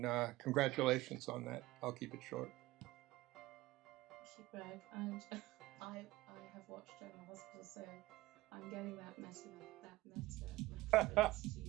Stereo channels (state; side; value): quieter; left; 18.8 dB